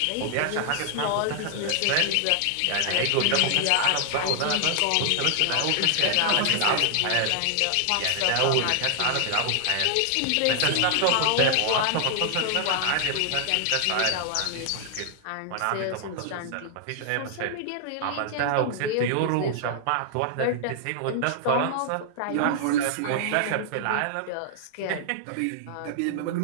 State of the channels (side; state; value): both; different; correlation 0.00